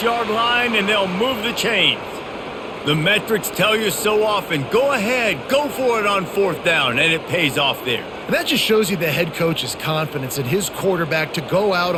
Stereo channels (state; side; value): identical; both; correlation 1.00